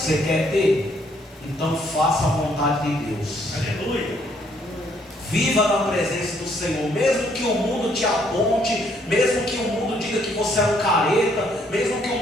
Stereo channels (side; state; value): both; normal; correlation 0.68